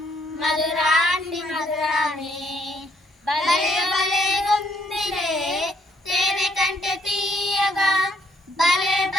మధురాతి మధురమే. భలే భలే గుందిలే తేనె కంటే తీయగా, భలే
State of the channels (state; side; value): normal; both; correlation 0.69